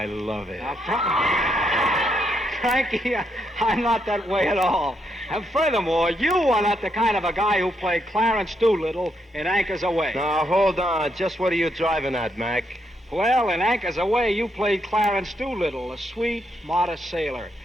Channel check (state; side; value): normal; both; correlation 0.78